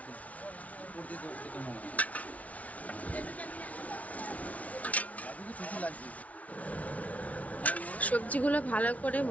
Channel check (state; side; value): late; right; 0.068 ms